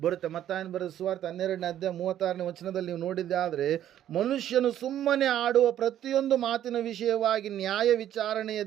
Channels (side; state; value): left; quieter; 11.4 dB